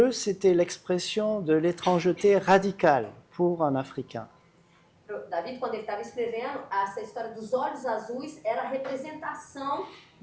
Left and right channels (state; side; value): identical; both; correlation 1.00